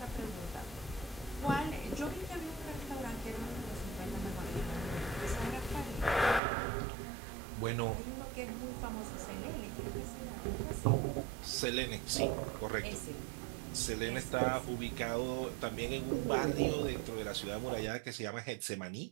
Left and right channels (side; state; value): left; drops out; at 6.4 s